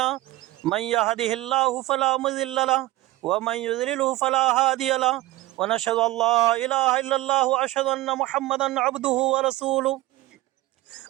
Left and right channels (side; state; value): left; quieter; 17.8 dB